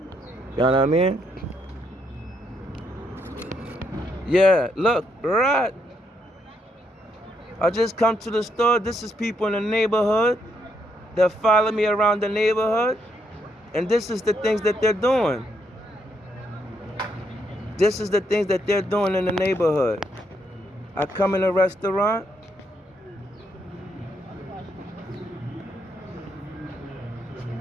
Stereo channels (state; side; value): normal; both; correlation 0.76